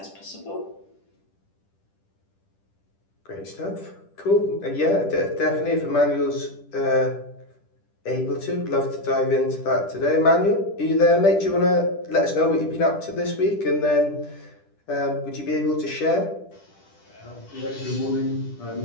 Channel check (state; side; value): late; right; 10 ms